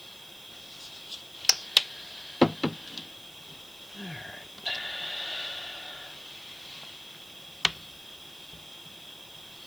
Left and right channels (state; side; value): noise; right; hiss, 17 dB below the sound